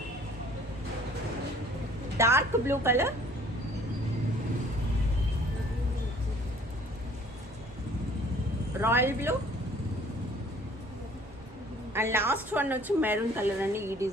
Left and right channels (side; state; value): both; normal; correlation 0.55